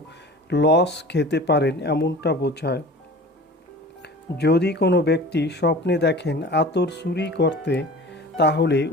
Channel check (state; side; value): normal; both; correlation 0.40